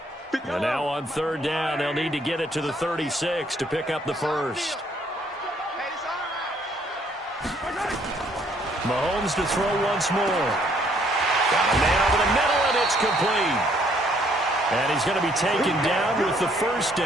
8. And now on 3rd down, they'll need to get it to the 36 to pick up the first. Mahomes to throw once more. Got a man over the middle, and it's complete. And he's going to be taken down with the first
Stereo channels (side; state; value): both; normal; correlation 0.65